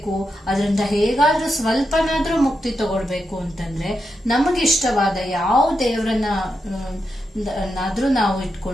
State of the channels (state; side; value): normal; both; correlation 0.86